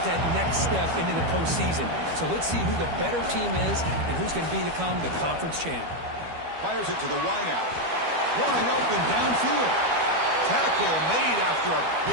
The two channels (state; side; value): late; left; 12 ms